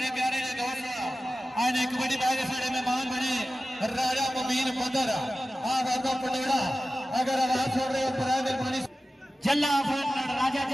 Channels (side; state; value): both; normal; correlation 0.95